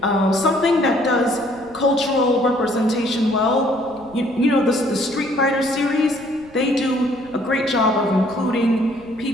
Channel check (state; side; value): noise; right; rumble, 25 dB below the sound